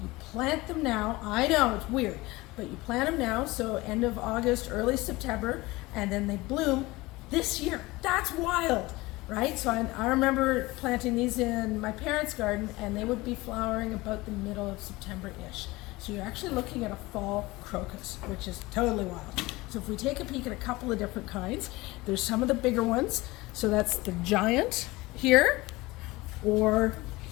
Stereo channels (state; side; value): quieter; right; 21.0 dB